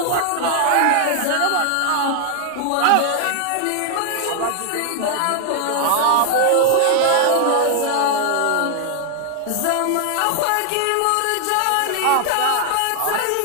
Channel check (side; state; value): both; different; correlation 0.00